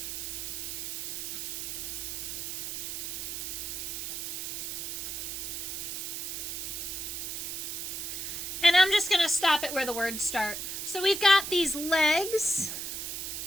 And I'm just going to stop it where the words start. So we've got these legs.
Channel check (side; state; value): right; noise; hiss, 4 dB below the sound